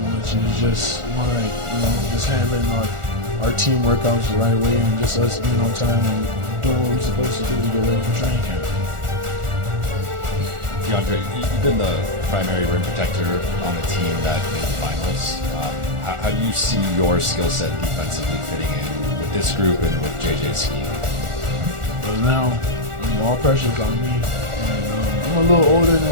much. It was just more like, just handling our team workouts the right way and just us being on time and doing what we're supposed to do to get ready for training camp. Deandre, you've been the primary rim protector on a team that made the finals. How do you see your skill set defensively fitting in with this group and with JJ's scheme? Well, now all pressure is on me, and I'm a little older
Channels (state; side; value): late; left; 1.4 ms